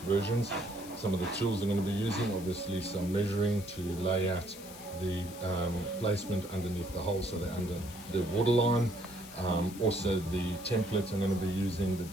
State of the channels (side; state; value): left; noise; hiss, 16 dB below the sound